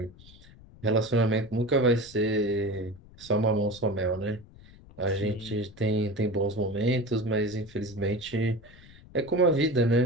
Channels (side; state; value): left; noise; rumble, 22 dB below the sound